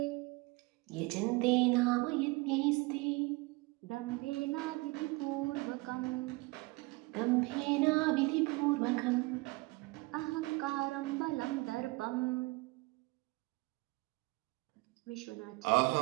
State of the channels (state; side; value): quieter; left; 24.7 dB